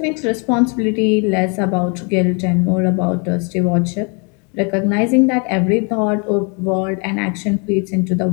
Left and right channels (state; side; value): quieter; right; 34.9 dB